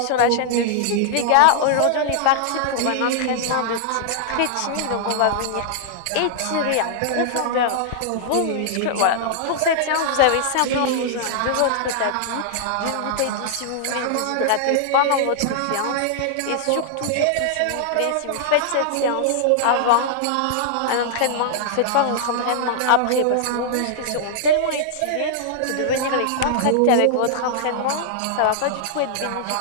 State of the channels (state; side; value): different; both; correlation -0.01